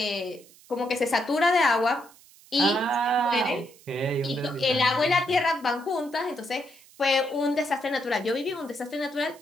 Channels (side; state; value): right; noise; hiss, 25 dB below the sound